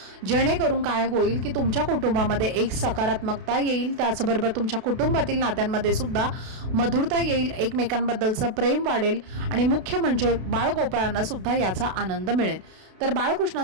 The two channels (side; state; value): left; late; 32 ms